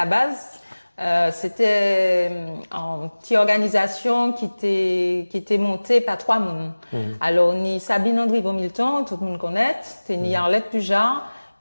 base, c'était une petite organisation qui était montée par 3 personnes. Alors, ni Sabine André Milton, tout le monde connaît, c'est ni Arlette Pujar,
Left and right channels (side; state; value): both; inverted; correlation -1.00